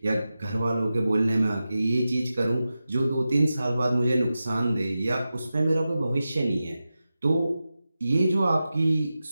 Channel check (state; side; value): inverted; both; correlation -0.93